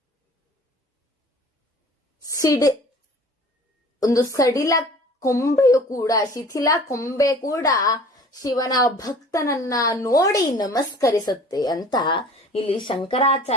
ಒಂದು ಸಡಿಲ ಕೊಂಬೆಯು ಕೂಡ, ಶಿಥಿಲ ಕೊಂಬೆ ಕೂಡ ಶಿವನ ಭಕ್ತನನ್ನ ನೋಡಿ ನಮಸ್ಕರಿಸುತ್ತೆ ಅಂತ ಇಲ್ಲಿ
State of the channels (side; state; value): both; normal; correlation 0.46